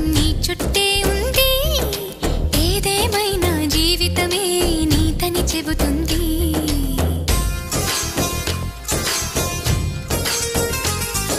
నీ చుట్టే ఉంది ఏదేమైనా జీవితమే నీతని చెబుతుంది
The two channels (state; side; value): identical; both; correlation 1.00